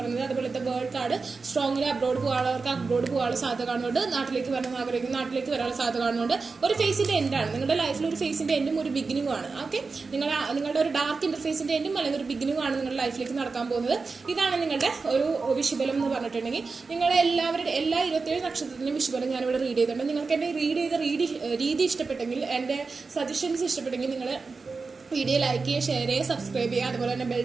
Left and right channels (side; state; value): left; quieter; 4.4 dB